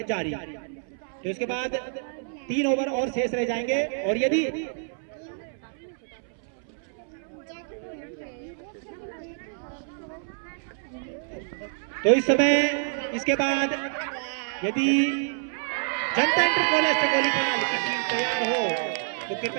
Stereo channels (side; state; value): left; silent; 59 dB below the other